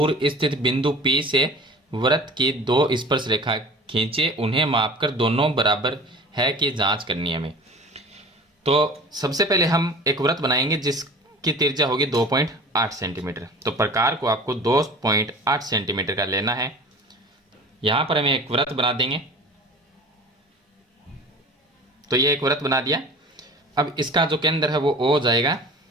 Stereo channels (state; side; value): normal; both; correlation 0.42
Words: स्थित बिंदु P से वृत्त की दो स्पर्श रेखा खींचे, उन्हें मापकर दोनों बराबर है कि जांच करनी है हमें। तो सबसे पहले हम एक वृत्त बनाएंगे जिसकी त्रिज्या होगी 2.8 सेंटीमीटर। तो प्रकार को आपको 2.8 सेंटीमीटर का लेना है। यहाँ पर हमें एक वृत्त बना देंगे। तो ये एक वृत्त बना दिया। अब इसका जो केंद्र है वो O जाएगा